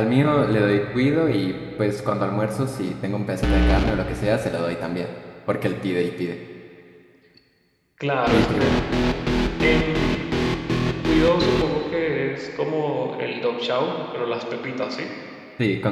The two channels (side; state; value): both; identical; correlation 1.00